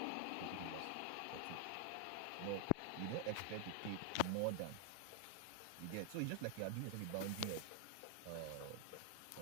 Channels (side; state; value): both; different; correlation 0.00